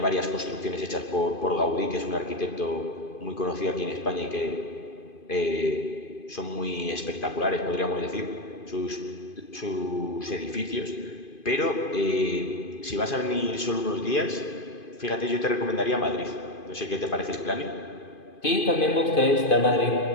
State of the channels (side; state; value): right; late; 2.5 ms